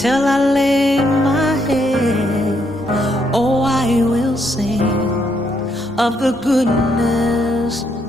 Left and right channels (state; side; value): normal; both; correlation 0.75